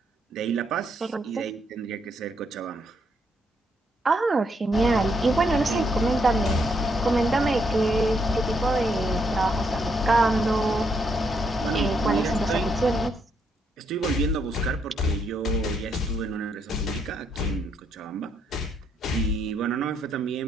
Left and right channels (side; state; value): both; normal; correlation 0.75